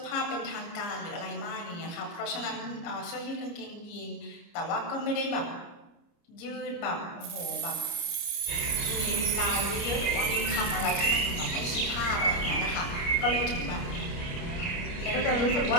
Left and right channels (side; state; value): right; late; 29 ms